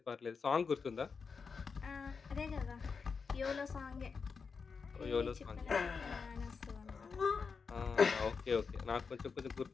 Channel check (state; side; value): quieter; right; 5.3 dB